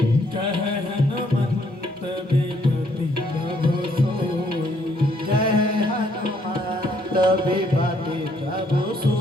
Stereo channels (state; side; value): normal; both; correlation 0.69